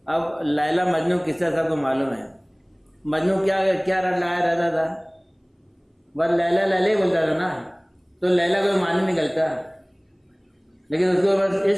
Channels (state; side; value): identical; both; correlation 1.00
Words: اب لیلا مجنون قصہ سب کو معلوم ہے، مجنون کیا لایا رہتا تھا، بس لیلا لیلا ہی بولتا تھا نا، تو لیلا کوئی معنی نکلتا، لیکن اس کو بس